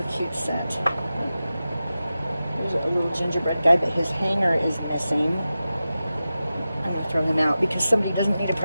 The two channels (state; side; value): inverted; both; correlation -0.93